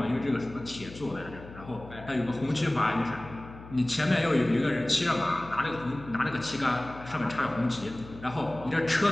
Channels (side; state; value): left; noise; hum, 16 dB below the sound